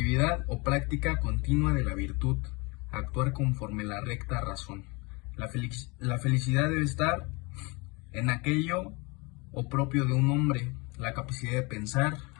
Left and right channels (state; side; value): quieter; right; 27.5 dB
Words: o práctica continua de la virtud, actuar conforme la recta razón. La felicidad debe estar en aquello o propio de un hombre, la capacidad de pensar,